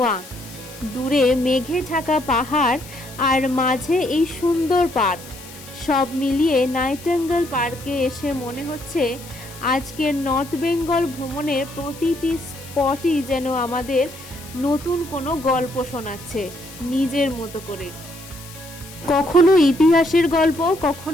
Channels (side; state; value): left; noise; hiss, 17 dB below the sound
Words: দূরে মেঘে ঢাকা পাহাড় আর মাঝে এই সুন্দর পার্ক, সব মিলিয়ে নাইটেঙ্গেল পার্কে এসে মনে হচ্ছে আজকের নর্থ বেঙ্গল ভ্রমণের প্রতিটি স্পটই যেন আমাদের নতুন কোনো গল্প শোনাচ্ছে নিজের মতো করে। কখনো ইতিহাসের গল্প,